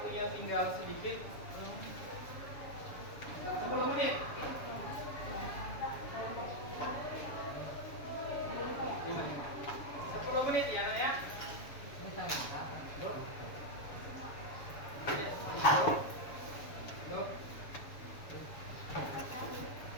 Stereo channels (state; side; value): late; right; 7.1 ms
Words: tinggal sedikit. 10 menit. 10 menit ya, Nak ya. Ini tangan kapan? Yuk. Yuk.